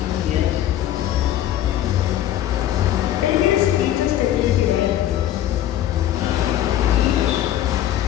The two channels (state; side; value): quieter; right; 12.2 dB